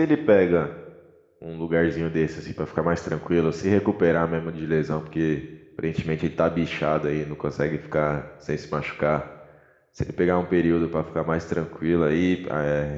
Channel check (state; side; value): identical; both; correlation 1.00